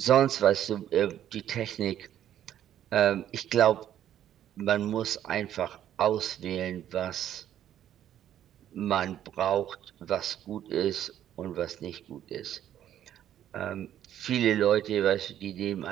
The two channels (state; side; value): quieter; left; 11.1 dB